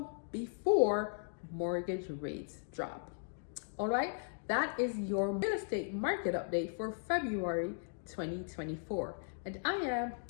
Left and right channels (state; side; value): silent; right; digital silence